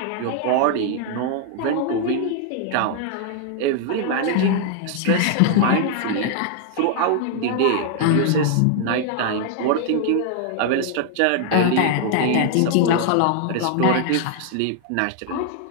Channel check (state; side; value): different; both; correlation 0.00